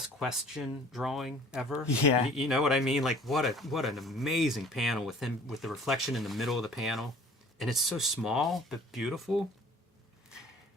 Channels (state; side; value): normal; both; correlation 0.50